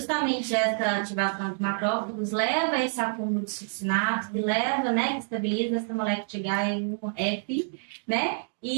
essa ativação de macrófagos leva a esse acúmulo de succinato, que leva, né, que estabiliza essa molécula de H1F, né,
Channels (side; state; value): left; silent; digital silence